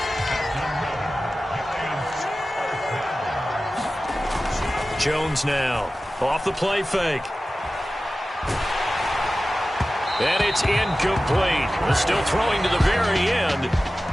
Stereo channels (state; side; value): normal; both; correlation 0.96